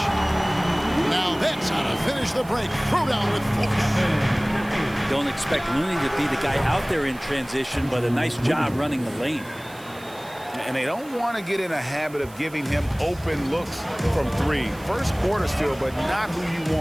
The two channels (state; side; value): noise; right; hiss, 22 dB below the sound